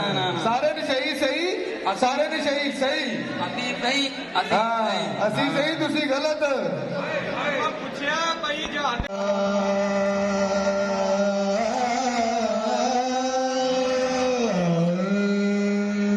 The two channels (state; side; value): identical; both; correlation 1.00